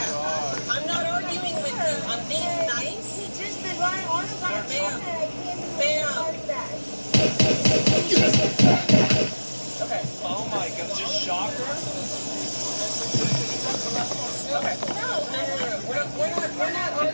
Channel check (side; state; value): both; inverted; correlation -1.00